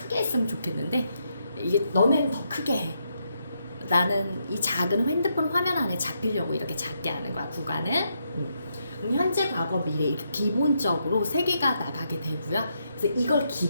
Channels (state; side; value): inverted; both; correlation -0.80